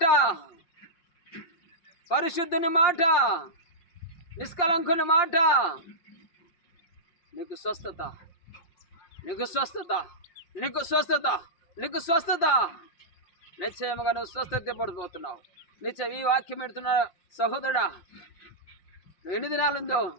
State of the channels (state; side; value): late; right; 5.7 ms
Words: పరిశుద్ధుని మాట, నిష్కలంకుని మాట, నీకు స్వస్థత, నీకు స్వస్థత, నీకు స్వస్థత, నీకు స్వస్థత. నిశ్చయముగా నువ్వు స్వస్థత పడిపోతున్నావు. నిశ్చయం ఈ వాక్యం పెడుతున్న సహోదరుడా, నువ్వు ఎన్ని దినాలుందో